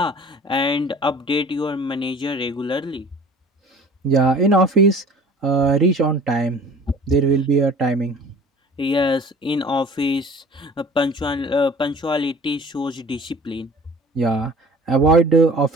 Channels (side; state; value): both; normal; correlation 0.47